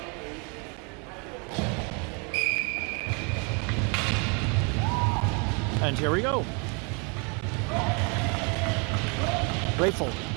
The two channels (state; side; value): quieter; left; 34.2 dB